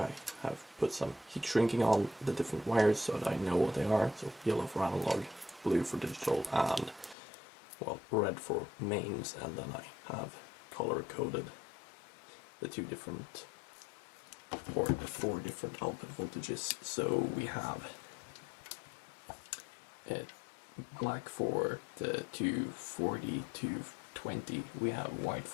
have put some heat shrinking on the different wires so that I know what they are. So yellow for analog, blue for digital, and well, red for mains, and then I have color coded the 2 different, or the 4 different output voltages. So we have black for the 240, 220, we have white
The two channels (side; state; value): right; drops out; at 7.2 s